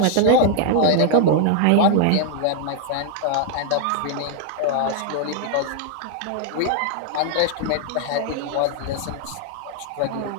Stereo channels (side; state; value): both; different; correlation 0.00